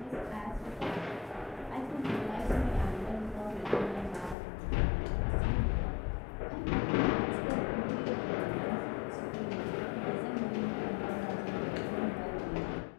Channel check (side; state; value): right; drops out; at 4.4 s